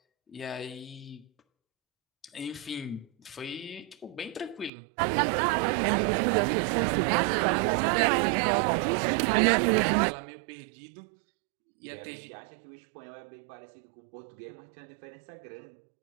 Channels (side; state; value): left; drops out; at 4.7 s